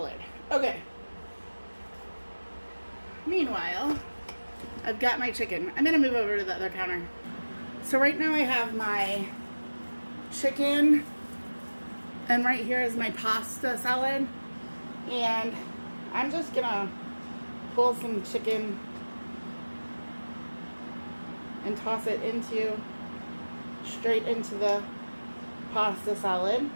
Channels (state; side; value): inverted; both; correlation -1.00